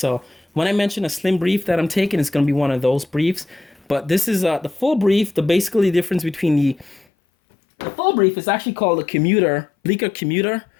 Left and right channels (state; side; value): drops out; right; at 7.1 s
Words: when I mention a slim brief that I'm taking, it's going to be one of those briefs. But this is the full brief. The basically difference between the full brief is actually called a Commuter, Bleecker Commuter